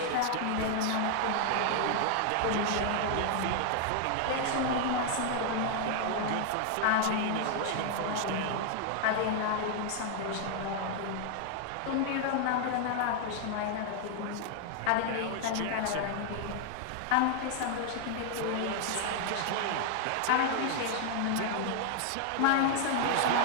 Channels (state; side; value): different; both; correlation 0.00